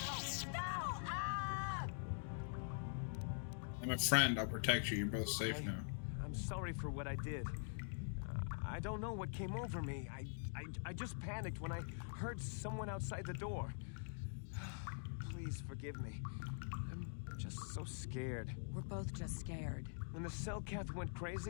No! Ah! I'm a friend. I'll protect you. You're both safe now. I'm sorry for what I did. I don't know what came over me. I just panicked when I heard someone outside the door. Please forgive me. I'm just so scared. We're both just scared. When the Selkath went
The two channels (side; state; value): right; silent; digital silence